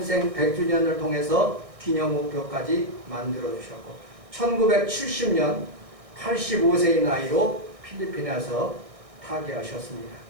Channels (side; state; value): left; late; 1.6 ms